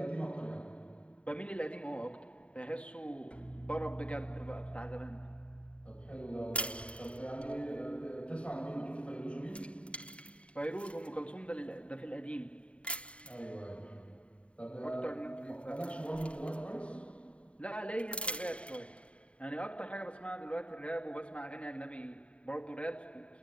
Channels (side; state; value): right; late; 0.061 ms